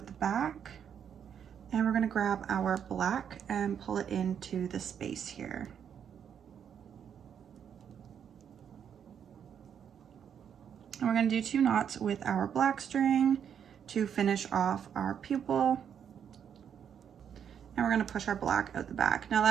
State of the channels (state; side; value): quieter; left; 8.2 dB